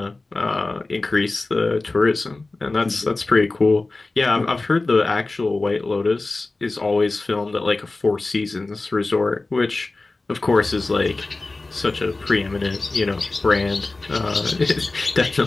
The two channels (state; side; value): quieter; right; 3.3 dB